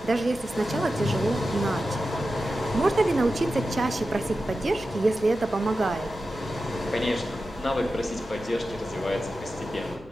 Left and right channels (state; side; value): normal; both; correlation 0.92